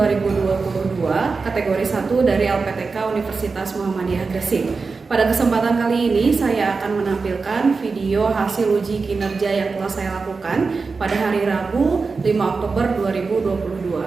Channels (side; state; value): left; quieter; 4.4 dB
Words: kategori 1 dari LPTK Universitas Muhammadiyah Gresik. Pada kesempatan kali ini, saya akan menampilkan video hasil uji kinerja yang telah saya lakukan pada hari Rabu 5 Oktober